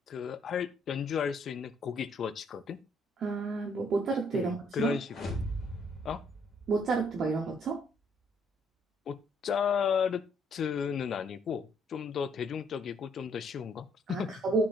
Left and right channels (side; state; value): both; normal; correlation 0.67